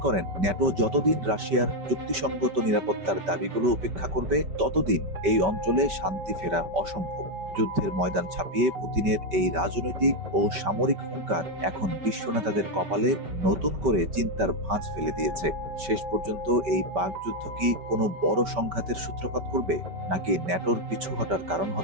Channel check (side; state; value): left; late; 5.2 ms